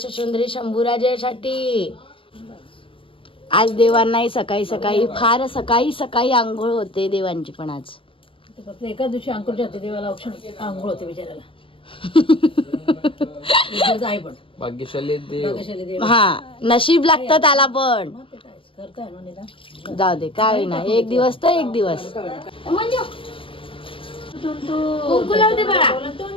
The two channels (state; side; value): late; right; 0.25 ms